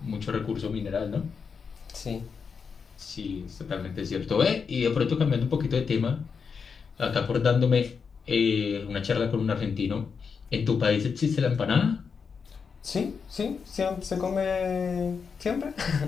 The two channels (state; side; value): quieter; right; 5.8 dB